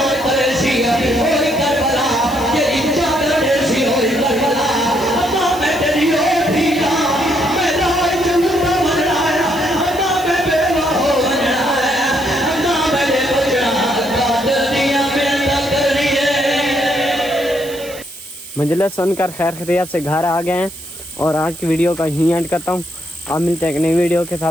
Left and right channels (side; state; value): right; noise; hiss, 16 dB below the sound